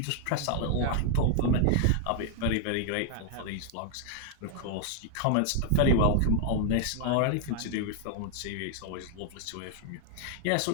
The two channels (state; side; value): different; both; correlation 0.00